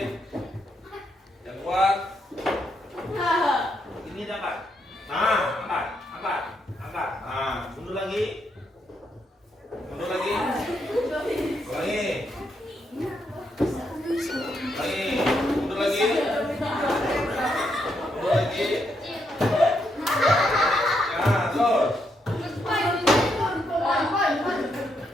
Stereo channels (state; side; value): normal; both; correlation 0.79